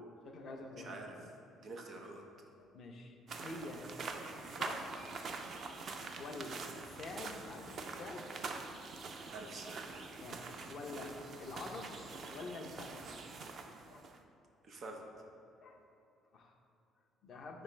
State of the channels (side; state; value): both; normal; correlation 0.67